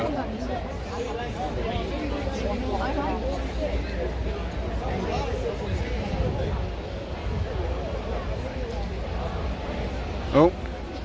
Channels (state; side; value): identical; both; correlation 1.00